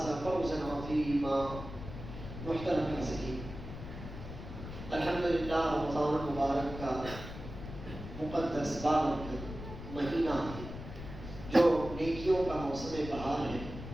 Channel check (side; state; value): left; noise; rumble, 10 dB below the sound